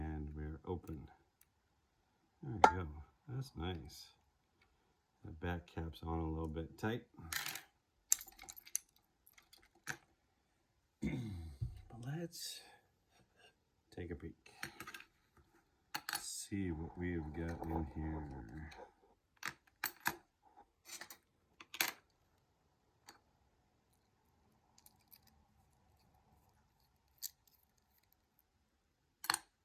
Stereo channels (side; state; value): both; identical; correlation 1.00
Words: we're open. There we go. That's nice. The back cap's on a little bit tight. But let's take a peek. See what we've got in here.